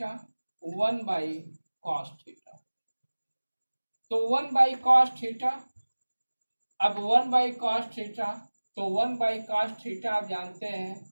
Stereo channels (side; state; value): both; inverted; correlation -1.00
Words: 1 by cos theta, तो 1 बाई कॉस थीटा। अब 1 बाई कॉस थीटा, तो 1 बाई कॉस थीटा आप जानते हैं